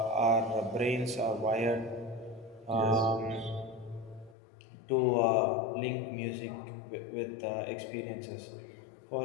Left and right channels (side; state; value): right; drops out; at 4.4 s